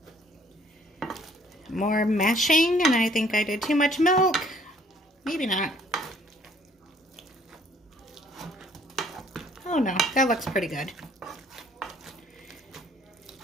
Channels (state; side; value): normal; both; correlation 0.60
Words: More mashing, and I think I did too much milk. Maybe not. Oh no, that looks pretty good.